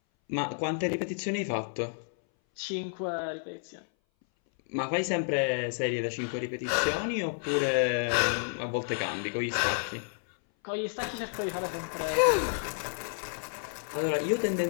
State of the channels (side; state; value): right; silent; 57 dB below the other